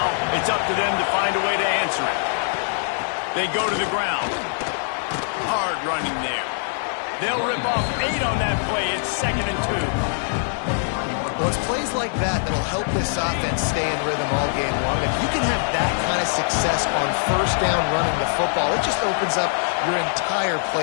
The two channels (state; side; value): silent; right; digital silence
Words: it's up to them to find a way to answer it. They go to the ground. Hard running there. They'll rip off 8 on that play. It's 2nd and 2. Well, it's plays like that that'll help this offense stay in rhythm all game long. If you can have that kind of success on 1st down running the football, it just opens up your entire